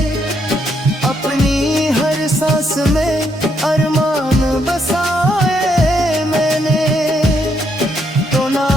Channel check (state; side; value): normal; both; correlation 0.75